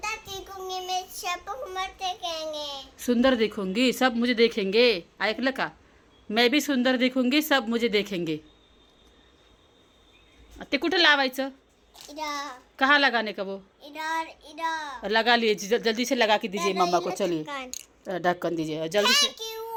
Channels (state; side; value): identical; both; correlation 1.00